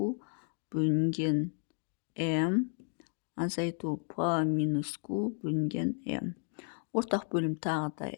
бөлінген m азайту p минус q бөлінген m. Ортақ бөлім тағы да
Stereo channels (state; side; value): silent; right; 56 dB below the other